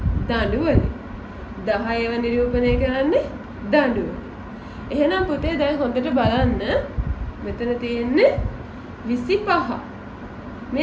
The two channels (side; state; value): both; identical; correlation 1.00